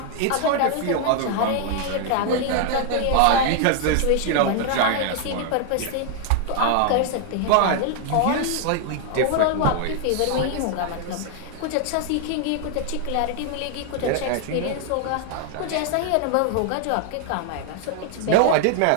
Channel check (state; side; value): different; both; correlation 0.00